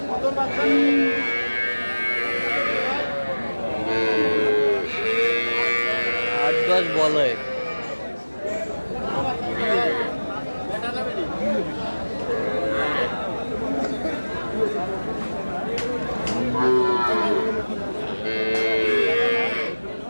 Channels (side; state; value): both; inverted; correlation -1.00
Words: প্রথম বাচ্চা 8-10 বলে। বেটা যাবে নি?